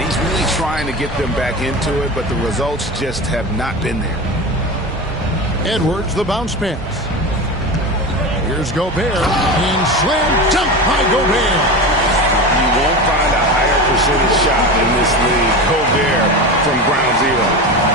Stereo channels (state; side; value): normal; both; correlation 0.26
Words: he's really trying to get them back into it, but the results just have not been there. Edwards, the bounce pass. Here's Gobert. And slam dunk by Gobert. You won't find a higher percentage shot in this league. Gobert from ground zero.